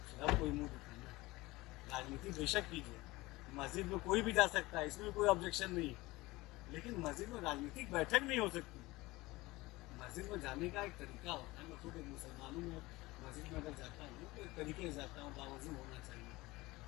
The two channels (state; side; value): quieter; right; 20.6 dB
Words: सब कोई मुँह दिखाना। राजनीति बेशक कीजिए, मस्जिद में कोई भी जा सकता है, इसमें कोई ऑब्जेक्शन नहीं है, लेकिन मस्जिद में राजनीतिक बैठक नहीं हो सकती। मस्जिद में जाने का एक तरीका होता है। मैं खुद एक मुसलमानों में मस्जिद में अगर जाता हूँ तो एक तरीके से जाता हूँ, बावजूद होना चाहिए।